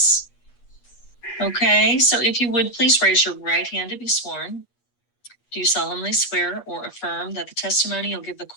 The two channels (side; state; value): right; late; 8.3 ms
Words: Okay, so if you would please raise your right hand to be sworn. Do you solemnly swear or affirm that the testimony you'll give the